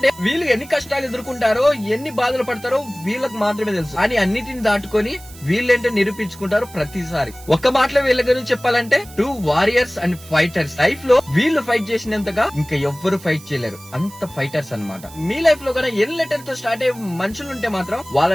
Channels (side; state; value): right; noise; hiss, 20 dB below the sound